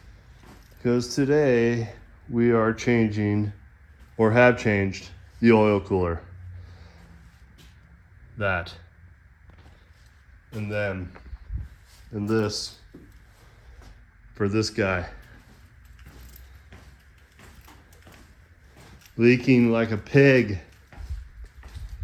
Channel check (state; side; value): identical; both; correlation 1.00